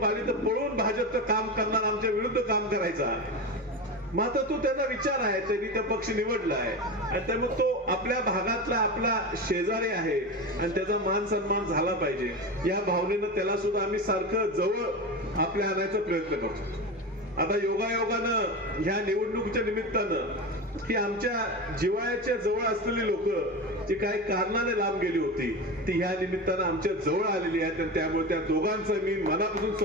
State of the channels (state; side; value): normal; both; correlation 0.23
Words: आली तर पळून भाजपचं काम करणार, आमच्या विरुद्ध काम करायचा. मात्र तो त्याचा विचार आहे, त्यांनी त्या पक्ष निवडला आहे आणि त्यामुळे तो आपल्या भागातला आपला शेजारी आहे आणि त्याचा मान सन्मान झाला पाहिजे या भावनेनं त्याला सुद्धा आम्ही सारखं जवळ आपल्या आणायचा प्रयत्न करतो. आता योगायोगानं ह्या निवडणुकीच्या निमित्तानं की आमच्या जिव्हाळ्याच्या जवळ असलेली लोक जी काही कारणाने लांब गेली होती ती ह्या निमित्तानं आमच्या जवळ आलेली आहेत आणि त्यामुळे त्या दोघांचं मी मनापासून